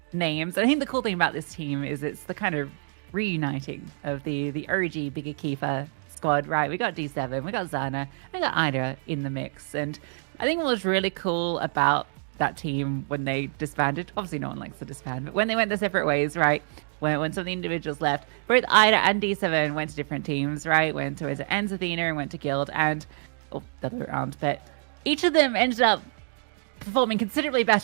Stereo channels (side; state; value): left; silent; digital silence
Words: names. I think the cool thing about this team is it's the kind of reuniting of the OG Bigger Keeper squad, right? We got D7, we got Zana, we got Ida in the mix. And I think what was really cool about that team when they disbanded, obviously no one likes to disband, but when they went their separate ways, right? When some of the individuals left, both Ida and D7 went to different teams, right? Went to Enz Athena and went to Guild, and the other way around, but each of them ended up performing considerably